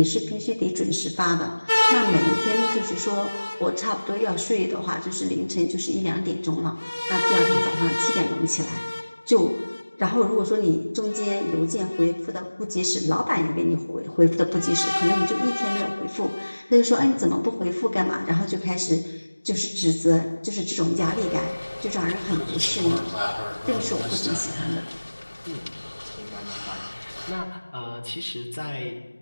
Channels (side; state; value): both; inverted; correlation -1.00